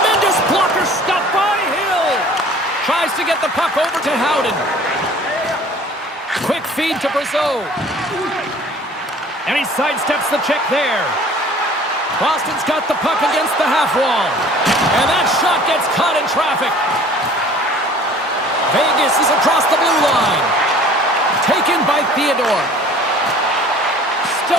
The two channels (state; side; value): normal; both; correlation 0.49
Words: blocker stuff by Hill. Tries to get the puck over to Howden. Quick feed to Brazeau. And he sidesteps the check there. Boston's got the puck against the half wall. And that shot gets caught in traffic. Vegas is across the blue line. Taken by Theodore.